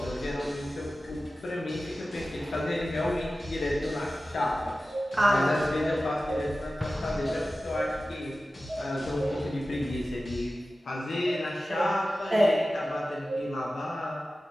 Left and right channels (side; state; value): both; normal; correlation 0.95